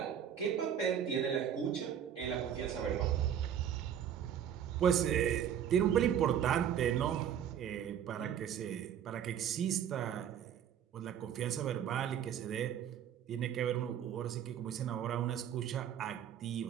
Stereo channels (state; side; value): quieter; left; 9.3 dB